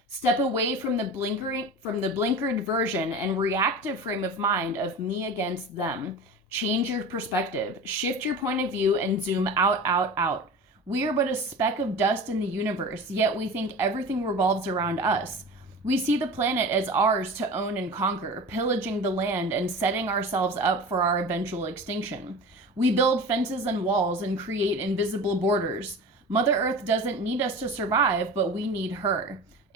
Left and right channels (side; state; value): both; normal; correlation 0.33